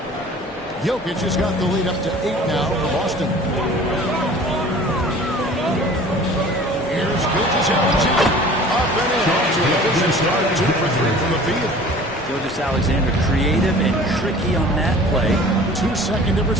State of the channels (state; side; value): normal; both; correlation 0.45